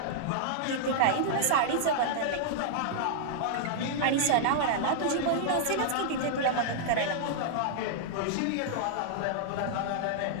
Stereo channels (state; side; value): different; both; correlation -0.01